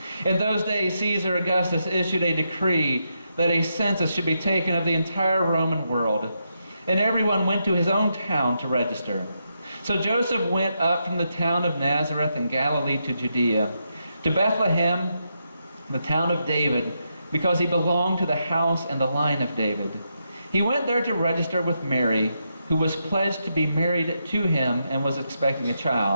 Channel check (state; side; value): inverted; both; correlation -0.83